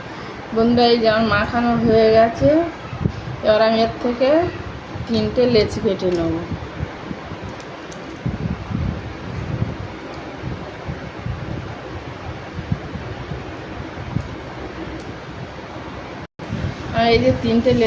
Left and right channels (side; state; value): both; identical; correlation 1.00